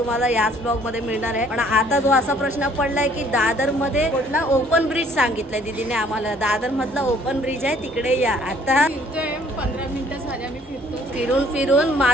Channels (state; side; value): normal; both; correlation 0.60